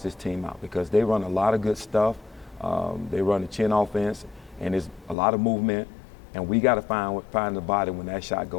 this team out because they run a lot of good stuff. They run the chin offense, and there's a lot of movement, and we got to find the body when that shot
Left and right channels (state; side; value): drops out; right; at 5.2 s